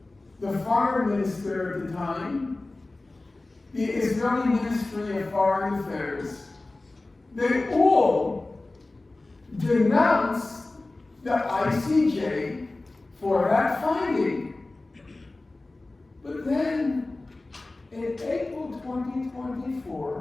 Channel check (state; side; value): quieter; right; 3.0 dB